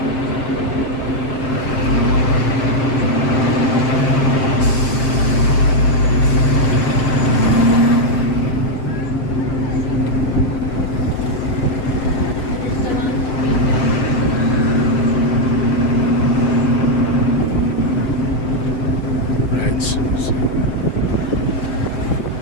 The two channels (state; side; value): late; right; 7.6 ms